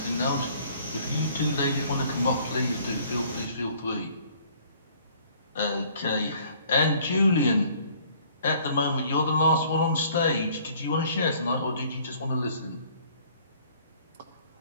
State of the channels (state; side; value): inverted; both; correlation -0.57